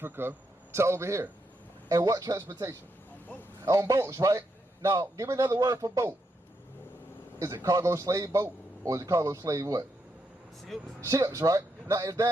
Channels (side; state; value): both; normal; correlation 0.81